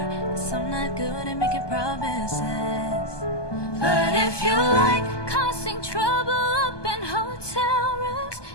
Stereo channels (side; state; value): right; late; 1.2 ms